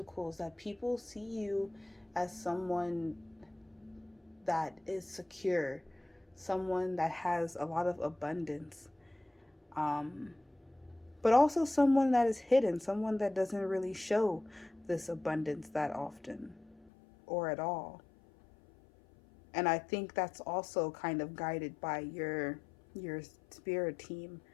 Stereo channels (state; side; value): drops out; right; at 16.9 s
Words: that people see you as someone that is secure, someone that has a lot of abundance, um, but also someone that is hidden, someone that doesn't really show this abundance that often or at all. And I think that's also kind of guided by your spirit team